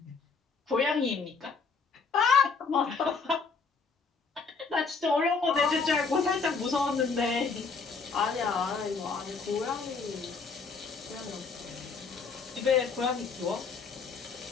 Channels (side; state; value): right; quieter; 4.8 dB